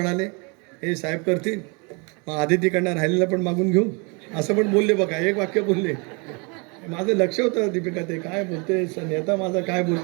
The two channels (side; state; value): left; quieter; 32.0 dB